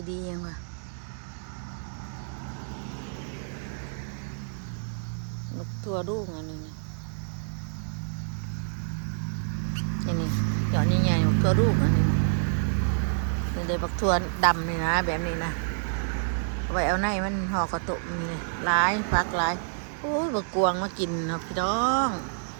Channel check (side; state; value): left; silent; digital silence